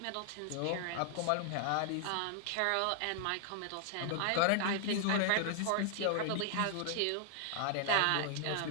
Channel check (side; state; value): both; different; correlation -0.01